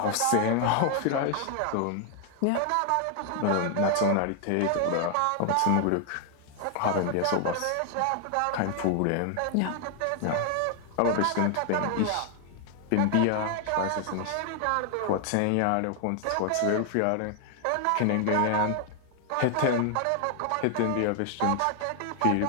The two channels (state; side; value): different; both; correlation 0.00